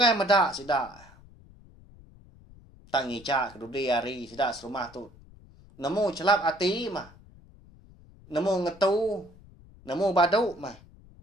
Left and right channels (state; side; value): noise; left; rumble, 23 dB below the sound